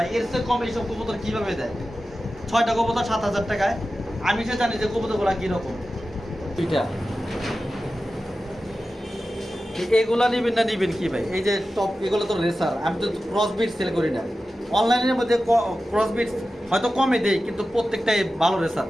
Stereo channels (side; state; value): both; normal; correlation 0.94